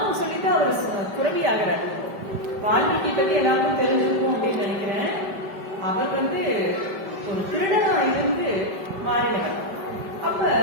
சொல்லிட்டு அவர் துறவி ஆகிறார். வால்மீகி பத்தி எல்லாருக்கும் தெரிஞ்சிருக்கும் அப்படின்னு நினைக்கிறேன். அவர் ஒரு திருடனா இருந்து மாறினவர். அப்ப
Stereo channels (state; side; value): late; left; 5.1 ms